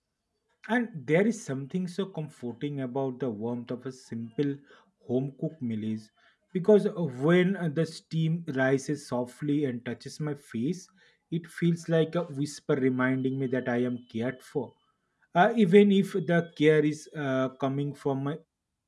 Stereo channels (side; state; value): both; identical; correlation 1.00